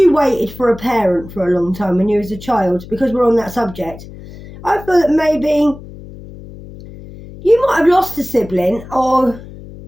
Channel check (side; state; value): left; noise; hum, 16 dB below the sound